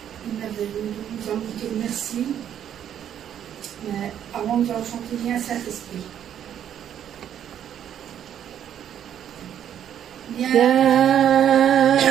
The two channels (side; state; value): left; quieter; 9.8 dB